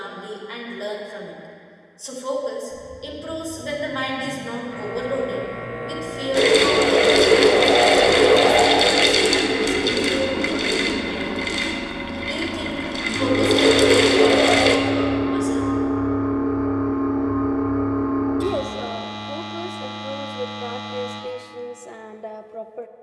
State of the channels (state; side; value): identical; both; correlation 1.00